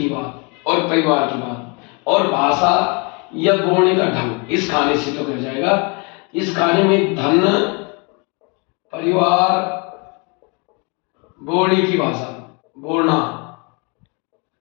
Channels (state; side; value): quieter; right; 32.2 dB